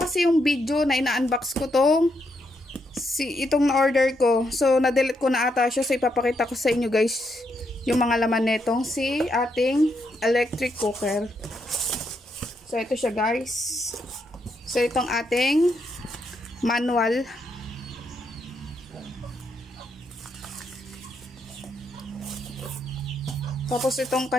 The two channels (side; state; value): both; normal; correlation 0.79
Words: yung video na ina-unbox ko itong na-order ko. So, na-delete ko na ata siya. So, ipapakita ko sa inyo guys yung mga laman netong ating electric cooker. So, ito siya guys. So, itong ating manual. Tapos, itong